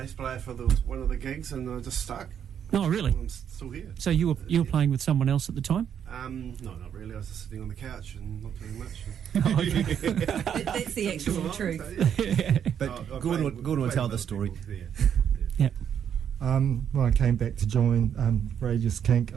player for one of the gigs, and I just stuck. Oh, really? I'm still here. So you were playing with someone else at the time? No, not really. I was just sitting on the couch and not doing much. That's the actual truth. But Gordon will tell the story. Yeah. When I came back to join Radius Kink,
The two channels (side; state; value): left; quieter; 8.6 dB